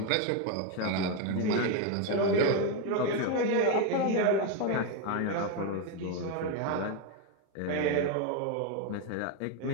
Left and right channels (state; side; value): different; both; correlation 0.02